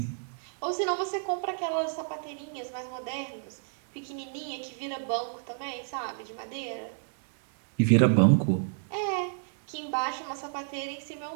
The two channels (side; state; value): left; silent; digital silence